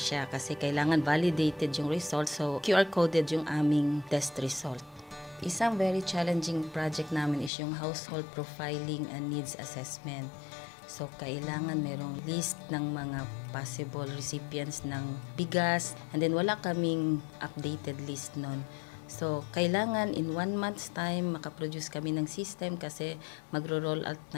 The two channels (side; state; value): right; drops out; at 7.5 s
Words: kasi kailangan validated yung result, so QR coded yung aming test result. Isang very challenging project namin is yung household profiling and needs assessment. So, kailangan merong list ng mga possible recipients ng bigas, and then wala kaming updated list nun. So, kailangan in 1 month's time makaproduce kami ng system kasi magro-roll out